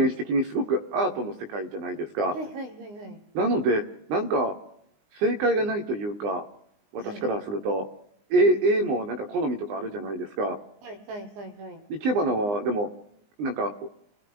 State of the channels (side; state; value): left; late; 20 ms